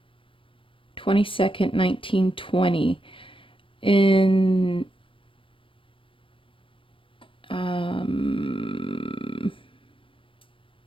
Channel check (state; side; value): late; right; 0.25 ms